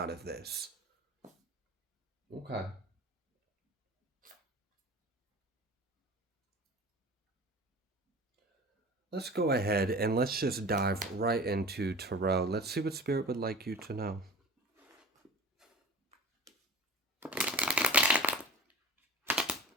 of this. Okay. Let's go ahead and let's just dive right into Tarot. Let's see what Spirit would like you to know.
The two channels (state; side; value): normal; both; correlation 0.39